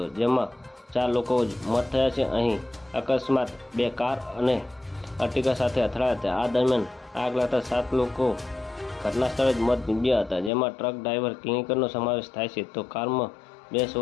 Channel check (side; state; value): right; drops out; at 10.5 s